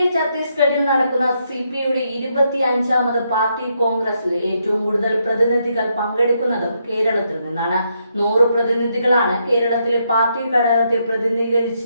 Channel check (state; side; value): inverted; both; correlation -0.78